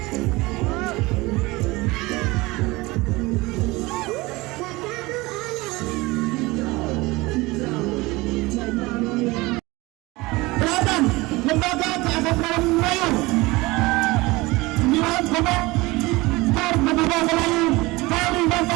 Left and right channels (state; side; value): quieter; left; 21.9 dB